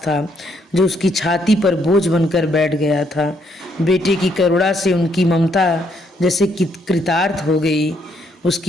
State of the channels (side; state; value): both; normal; correlation 0.72